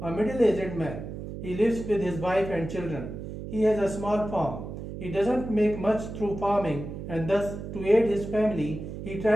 a middle-aged man. He lives with his wife and children. He has a small farm. He doesn't make much through farming and thus, to aid his family, he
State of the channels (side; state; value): right; noise; hum, 9 dB below the sound